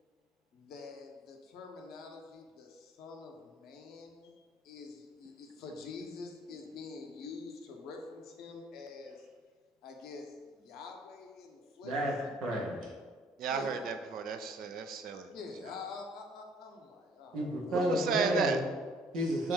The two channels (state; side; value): normal; both; correlation 0.59